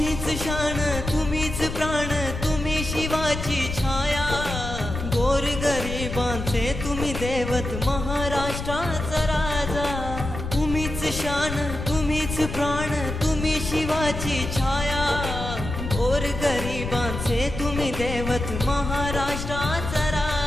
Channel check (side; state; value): left; noise; rumble, 6 dB below the sound